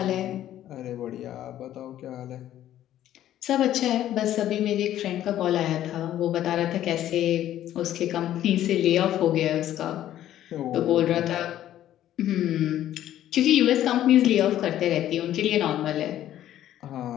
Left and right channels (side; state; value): right; quieter; 12.3 dB